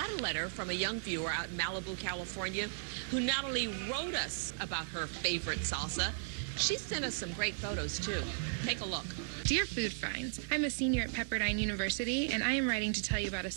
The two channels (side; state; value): left; silent; digital silence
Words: a letter from a young viewer out in Malibu, California, who not only wrote us about her favorite salsa, she sent us some great photos, too. Take a look. Dear Food Finds, I'm a senior at Pepperdine University, and I am writing to tell you about a